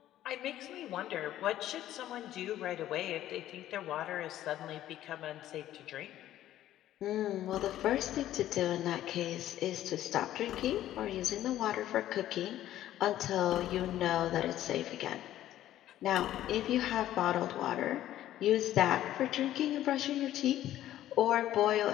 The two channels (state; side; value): quieter; right; 13.0 dB